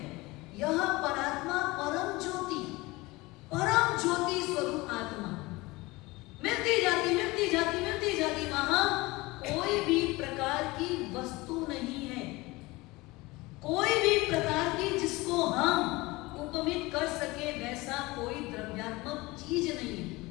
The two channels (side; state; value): right; quieter; 21.9 dB